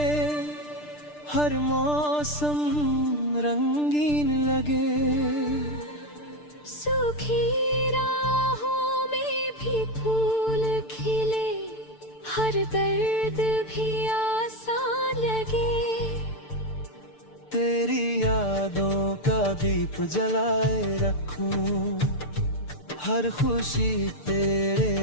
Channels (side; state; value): right; late; 6.7 ms